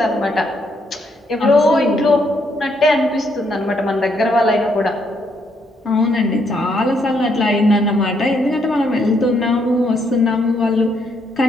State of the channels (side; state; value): both; normal; correlation 0.74